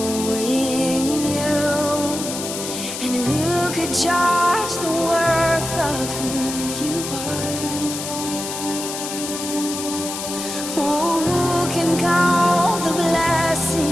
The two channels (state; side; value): noise; left; hiss, 6 dB below the sound